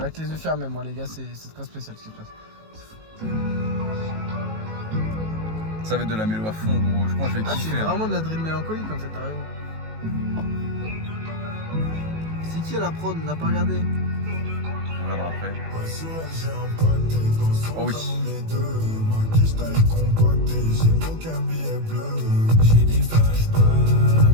avec les yeux fermés, moi les gars, c'est très spécial ce qui se passe. Ça va être de la mélo à fond, gros. Je pense que je vais kiffer. C'est vraiment de la drill mélancolique en fait, t'as raison. C'est qui à la prod? On n'a pas regardé. On regardera après. Oh oui. J'ai des flashbacks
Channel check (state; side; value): late; left; 18 ms